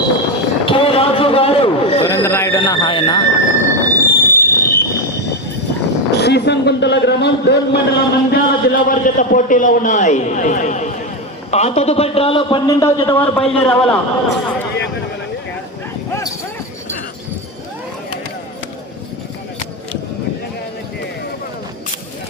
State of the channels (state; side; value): normal; both; correlation 0.13